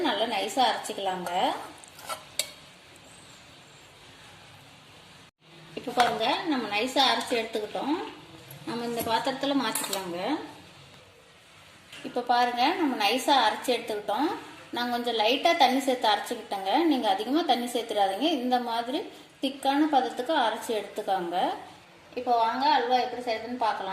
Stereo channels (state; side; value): identical; both; correlation 1.00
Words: நல்லா நைஸாக அரைச்சிக்கலாங்க. இப்போ பாருங்க, நம்ம நைஸாக அரைச்சி எடுத்துக்கிட்டோம். நம்ம இந்த பாத்திரத்தில் மாற்றிக்கலாங்க. இப்போ பாருங்க, நம்ம நைஸாக அரைச்சி எடுத்துக்கிட்டோம். நான் கொஞ்சம் லைட்டாக தண்ணி சேர்த்து அரைச்சிக்கிட்டேங்க. நீங்கள் அதிகமாக தண்ணி சேர்த்துடாதீங்க. இந்த மாதிரி திக்கான பதத்துக்கு அரைச்சி எடுத்துக்காங்க. இப்போ வாங்க அல்வா எப்படி செய்யுதுன்னு